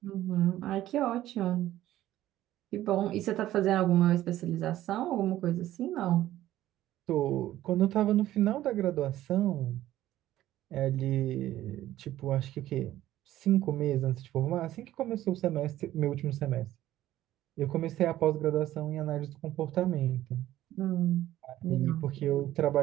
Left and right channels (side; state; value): left; quieter; 14.0 dB